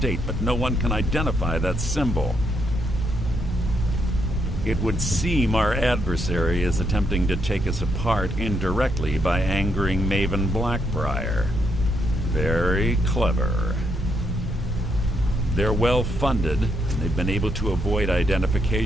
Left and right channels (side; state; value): both; normal; correlation 0.77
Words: but no one can identify that symbol. It would seem our adversary is attempting to take us apart indirectly by angering Maven Blackbriar. Very clever. They're well funded, and they've been able to avoid